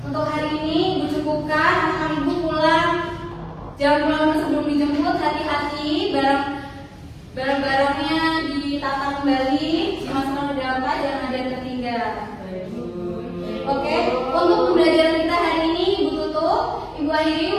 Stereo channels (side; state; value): both; identical; correlation 1.00